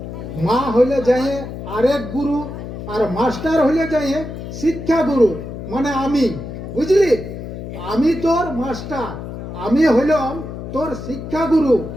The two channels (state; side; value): noise; left; hum, 9 dB below the sound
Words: মা হলে যায় আরেক গুরু, আর মাস্টার হলে যায় শিক্ষা গুরু, মানে আমি। বুঝলি? আমি তোর মাস্টার, আমি হলাম তোর শিক্ষা গুরু।